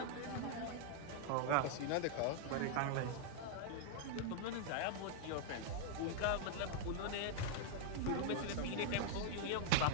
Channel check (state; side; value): different; both; correlation -0.01